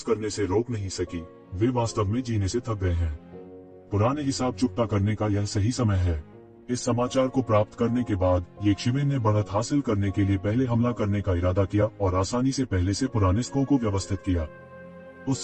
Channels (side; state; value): both; identical; correlation 1.00